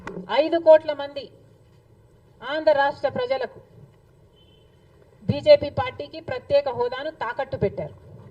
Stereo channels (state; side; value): identical; both; correlation 1.00